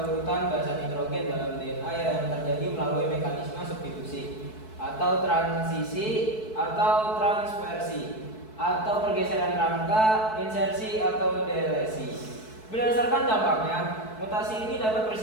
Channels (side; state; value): right; late; 4.6 ms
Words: urutan basa nitrogen dalam DNA yang terjadi melalui mekanisme substitusi atau transisi atau transversi atau pergeseran rangka, insersi atau delesi. Berdasarkan dampaknya, mutasi ini dapat